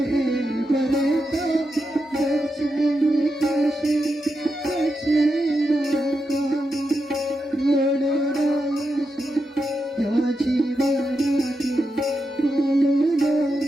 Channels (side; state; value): both; normal; correlation 0.86